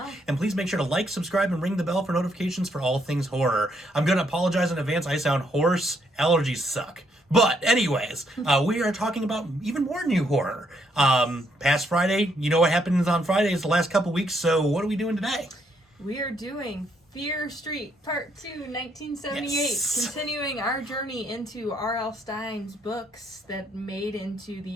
And please make sure to like, subscribe, and ring the bell for notifications for all things horror. I'm going to apologize in advance. I sound hoarse. Allergies suck. But anyways, we are talking about even more new horror. Past Friday, you know what happens on Fridays the last couple weeks, so what are we doing today? We are doing Fear Street Part 2, 1978, Yes. continuing our journey into R.L. Stine's books that made into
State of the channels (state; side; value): normal; both; correlation 0.73